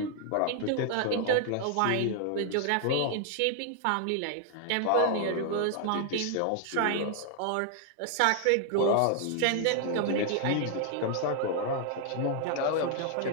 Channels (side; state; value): both; different; correlation 0.00